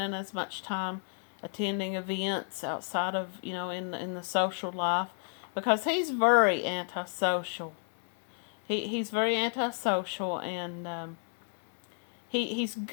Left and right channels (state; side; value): silent; right; 57 dB below the other